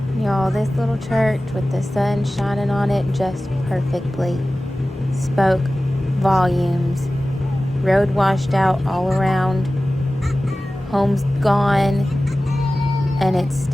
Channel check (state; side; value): normal; both; correlation 0.96